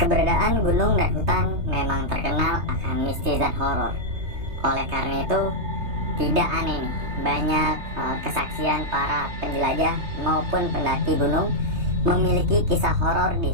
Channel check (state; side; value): late; left; 3.3 ms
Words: Keberadaan gunung dan hutan memang terkenal akan mistis dan horor. Oleh karena itu, tidak aneh nih, banyak kesaksian para penjelajah maupun pendaki gunung memiliki kisah horor di